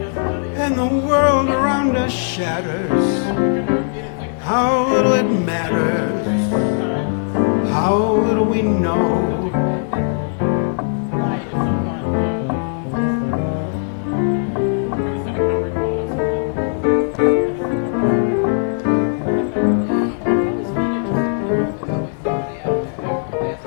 and the world around us shatters, how little it matters, how little we know.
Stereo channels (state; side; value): silent; right; 67 dB below the other